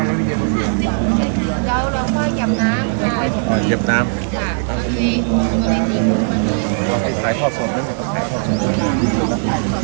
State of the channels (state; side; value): silent; left; 62 dB below the other